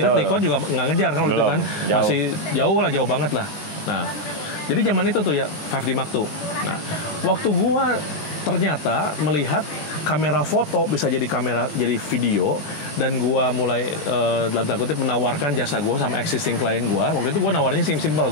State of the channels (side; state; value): right; late; 19 ms